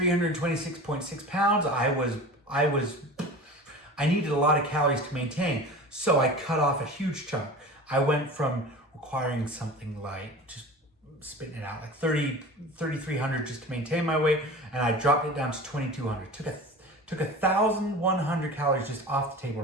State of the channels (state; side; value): normal; both; correlation 0.35